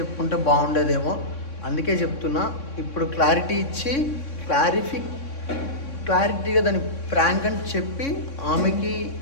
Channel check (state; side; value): late; right; 3.6 ms